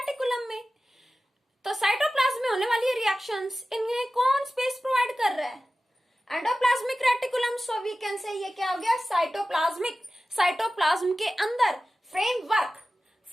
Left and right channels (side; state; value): both; normal; correlation 0.95